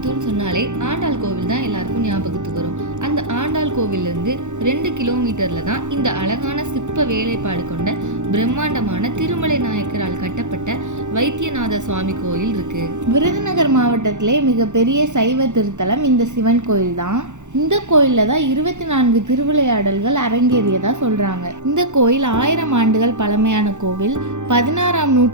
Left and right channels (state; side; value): late; left; 0.84 ms